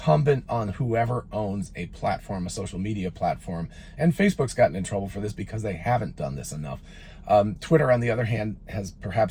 on whoever owns a platform, a social media platform. And Facebook's gotten in trouble for this because they haven't done this enough. Twitter, on the other hand, has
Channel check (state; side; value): identical; both; correlation 1.00